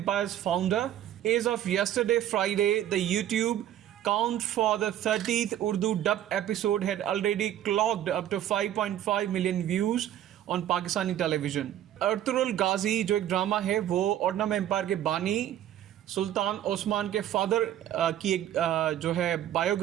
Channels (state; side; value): quieter; left; 11.7 dB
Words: founder. As of yesterday, Friday, the YouTube count for the 30th Urdu dub episode had already clocked up to 5.5 million views on Pakistani television. Ertugrul Ghazi जो एक ड्रामा है वो ऑटोमन एम्पायर के बानी सुल्तान ओस्मान के फादर की एक जो है